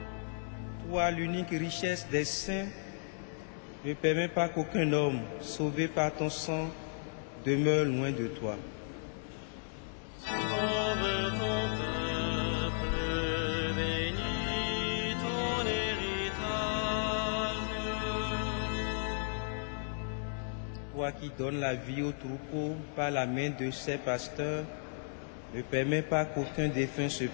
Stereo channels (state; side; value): silent; right; 55 dB below the other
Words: Toi, l'unique richesse des saints, ne permets pas qu'aucun homme, sauvé par ton sang, demeure loin de toi. Sauve ton peuple, bénis ton héritage. Toi qui donnes la vie au troupeau par la main de ses pasteurs, ne permets pas qu'aucun défunt se